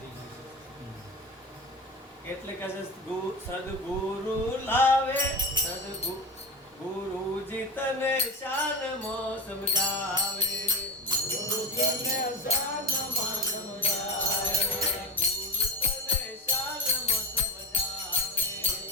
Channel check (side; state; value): both; normal; correlation 0.23